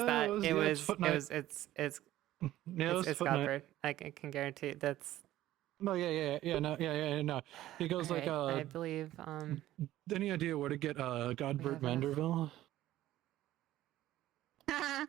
It's Foot Knight. Godbert. I can guarantee that's. No, no. He goes All like right, I believe. Any idea where to get Godbert Vanderville?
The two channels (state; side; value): quieter; left; 14.4 dB